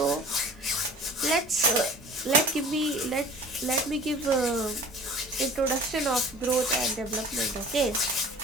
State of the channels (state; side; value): normal; both; correlation 0.44